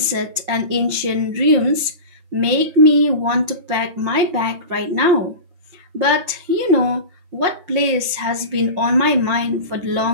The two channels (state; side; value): late; left; 5.7 ms